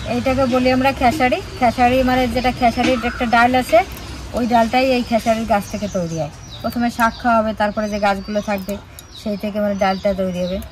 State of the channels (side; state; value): both; identical; correlation 1.00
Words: এইটাকে বলি আমরা খেসারি। খেসারি মানে যেটা খেসারির একটা ডাল আছে, ওই ডালটাই এই খেসারির গাছ থেকে তৈরি হয়। প্রথমে শাক খাওয়া হবে, তারপরে যে গাছগুলো থাকবে সেই থেকে মানে ডালটা তৈরি হবে,